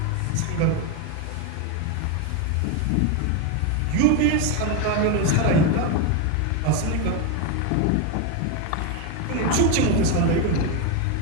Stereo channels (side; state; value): both; different; correlation 0.02